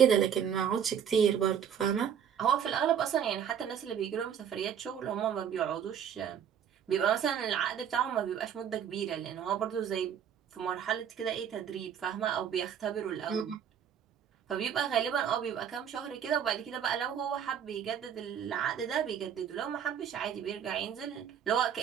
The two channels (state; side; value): quieter; left; 8.5 dB